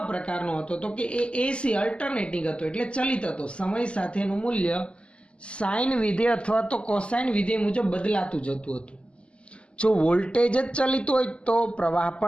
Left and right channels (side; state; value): right; late; 0.055 ms